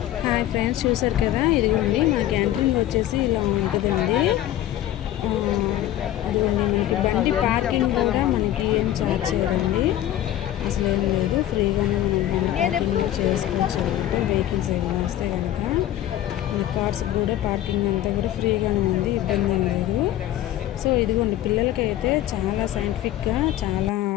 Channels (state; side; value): quieter; right; 12.9 dB